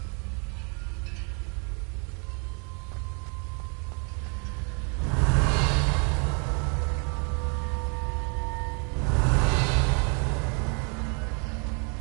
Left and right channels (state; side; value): quieter; left; 37.2 dB